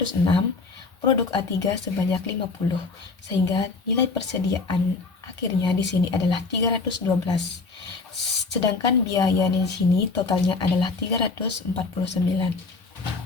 produk A3 sebanyak 50, sehingga nilai persediaan akhirnya di sini adalah 312. Sedangkan biaya di sini totalnya adalah 349.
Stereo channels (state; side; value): quieter; right; 4.1 dB